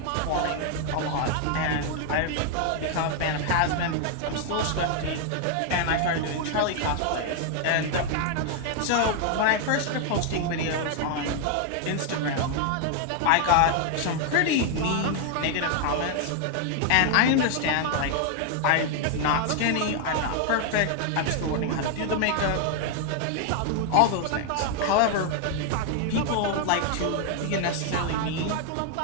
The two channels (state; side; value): different; both; correlation 0.00